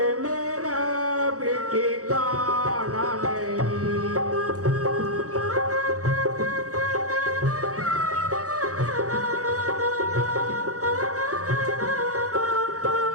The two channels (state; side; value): late; left; 0.66 ms